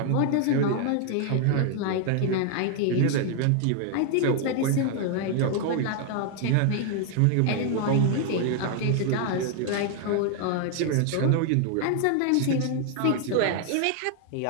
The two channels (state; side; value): different; both; correlation 0.00